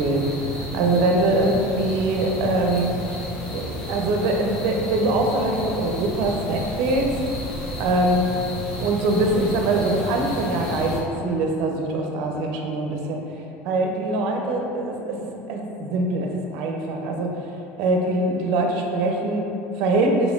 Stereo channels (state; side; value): normal; both; correlation 0.32